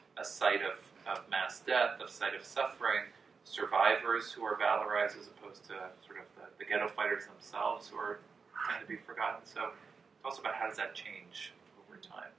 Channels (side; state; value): left; quieter; 5.2 dB